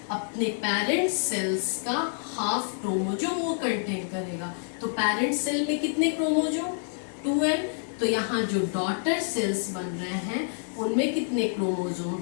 अपने पेरेंट सेल्स का हाफ क्रोमोजोम वो कंटेन करेगा। तो पेरेंट सेल में कितने क्रोमोजोम? 2n। तो यहाँ जो डॉटर सेल्स बन रहे हैं उनमें कितने क्रोमोजोम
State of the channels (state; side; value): silent; right; digital silence